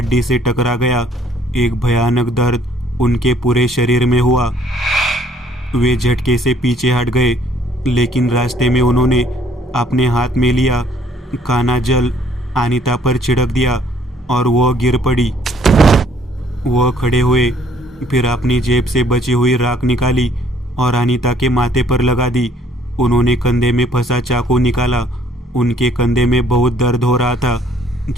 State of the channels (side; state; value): both; normal; correlation 0.62